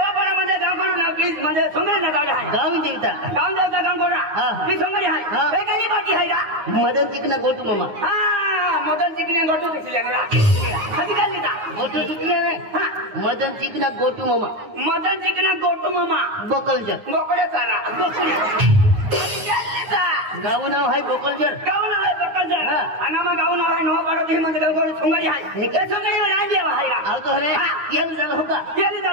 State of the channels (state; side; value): late; left; 9.5 ms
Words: मध्ये गाव करून प्लीज म्हणजे सोंगडी ना गाव आहे गाव देवता गाव कोणा ती सोंगडी आहे वेगळी बाकी आहे का मदन चिकना गोटू मामा हा मदन चिकने गोटू दिसले ना कधी काढली का गोटू चिकना मदन चिकना गोटू मामा मदन चिकना गोटू मामा बोकलजर गोकडे चाला गाव नाव आहे बोकलजर गाव नाव आहे बोकलजर आणि मग गाव नाव आहे नवापडा ती म्हणजे गाव सोंगडी आहे हे काय सोंगडी राज देवा आहे आव तो रे येली झालं हो का येली